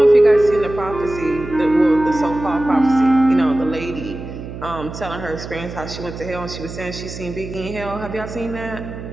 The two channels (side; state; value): right; noise; hum, 10 dB below the sound